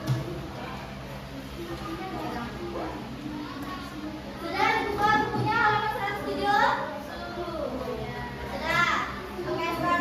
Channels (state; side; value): identical; both; correlation 1.00